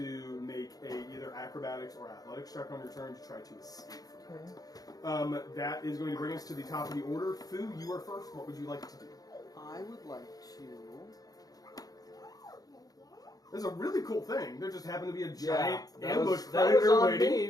make either acrobatics or athletics check on your turn to try to escape from it. That is going to bring us to the top of the order. Fu, you are first. What would you like to do? I would like to. There's a really cool thing. There just happened to be a giant that ambush was, that was predator on waiting. me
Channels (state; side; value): late; right; 0.18 ms